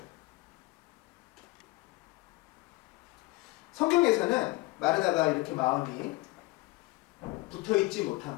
성경에서는 마르다가 이렇게 마음이 붙어있지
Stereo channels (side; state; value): right; quieter; 21.2 dB